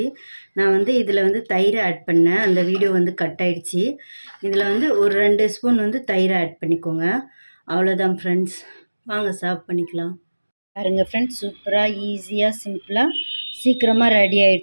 நான் வந்து இதில் வந்து தயிர் ஆட் பண்ணேன். அந்த வீடியோ வந்து கட் ஆகிடுச்சி. இதில் வந்து ஒரு 2 ஸ்பூன் வந்து தயிர் ஆட் பண்ணிக்கோங்க. அவ்வளோதான் ஃப்ரெண்ட்ஸ், வாங்க சர்வ் பண்ணிக்கலாம். பாருங்கள் ஃப்ரெண்ட்ஸ், சூப்பராக ஈஸியாக சிம்பிளாக சீக்கிரமாக ரெடி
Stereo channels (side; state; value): both; inverted; correlation -1.00